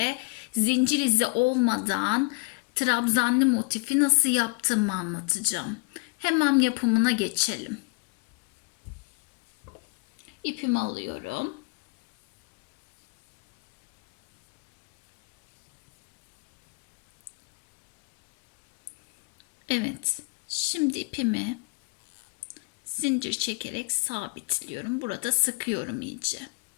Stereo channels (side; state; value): right; quieter; 29.5 dB